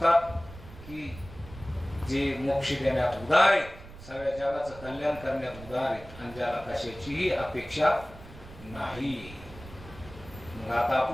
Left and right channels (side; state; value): right; noise; rumble, 17 dB below the sound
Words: की जे मोक्ष देण्यात उदार आहेत, सगळ्या जगाचं कल्याण करण्यात उदार आहेत, आणि ज्याला कशाचीही अपेक्षा नाही. मग आता